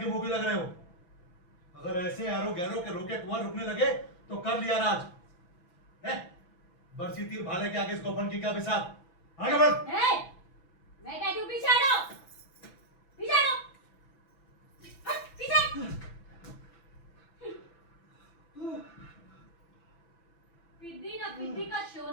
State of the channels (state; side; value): late; right; 5.9 ms